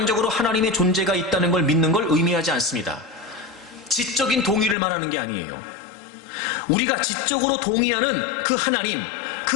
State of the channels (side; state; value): right; drops out; at 4.8 s